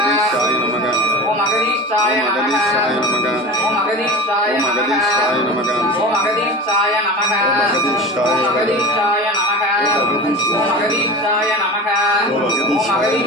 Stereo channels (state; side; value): normal; both; correlation 0.30